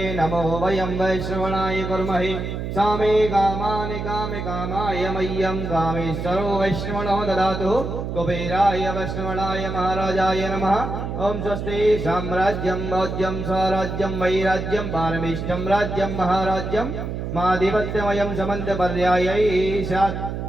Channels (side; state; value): right; noise; hum, 5 dB below the sound